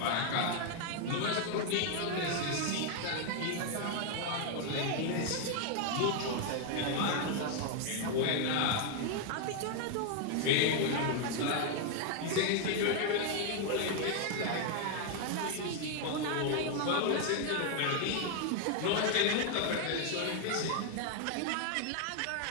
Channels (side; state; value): both; different; correlation 0.00